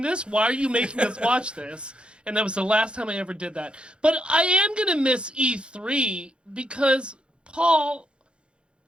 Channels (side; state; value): left; late; 0.055 ms